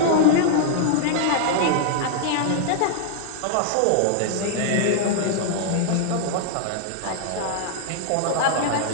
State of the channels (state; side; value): different; both; correlation -0.01